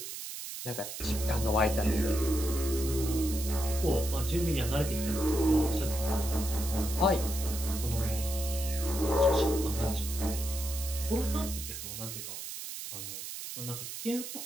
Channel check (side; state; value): right; noise; hiss, 8 dB below the sound